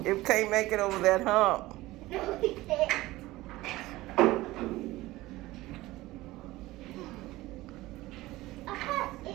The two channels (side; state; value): left; quieter; 18.3 dB